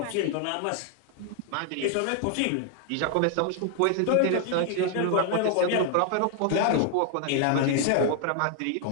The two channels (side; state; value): both; different; correlation 0.00